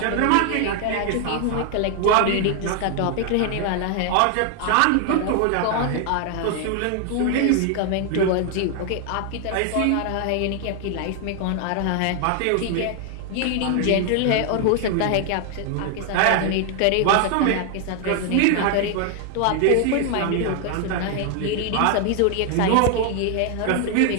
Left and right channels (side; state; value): both; different; correlation 0.00